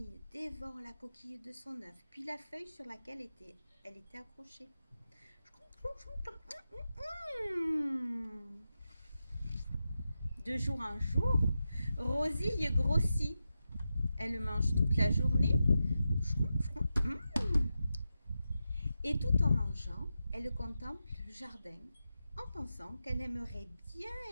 dévore la coquille de son œuf, puis la feuille sur laquelle elle était accrochée. De jour en jour, Rosie grossit. Elle mange toute la journée. Et tout en mangeant, elle contemple le jardin en pensant qu'elle aimerait bien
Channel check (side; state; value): both; inverted; correlation -0.90